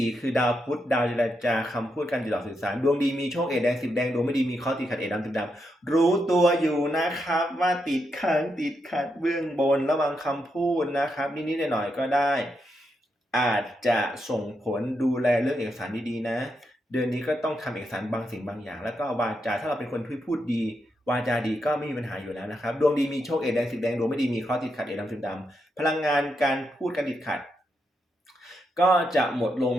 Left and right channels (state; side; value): normal; both; correlation 0.82